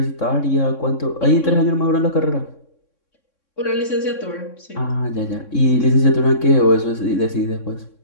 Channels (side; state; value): right; late; 3.6 ms